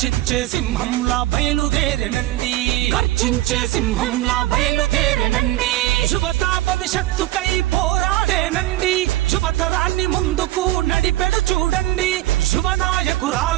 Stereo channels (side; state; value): left; quieter; 16.3 dB